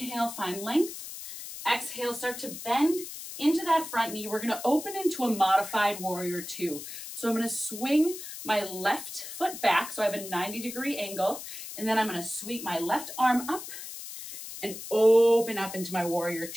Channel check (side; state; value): left; noise; hiss, 10 dB below the sound